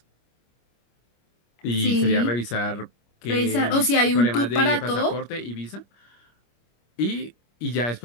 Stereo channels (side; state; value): right; late; 25 ms